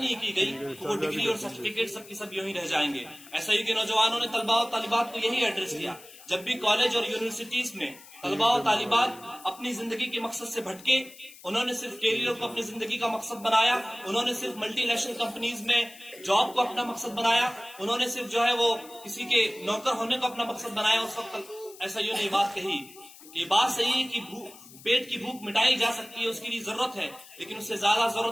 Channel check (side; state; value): left; noise; hiss, 20 dB below the sound